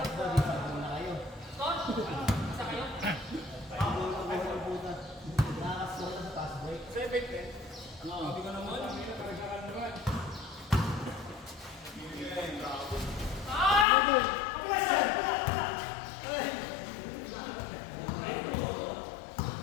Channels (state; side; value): drops out; right; at 13.9 s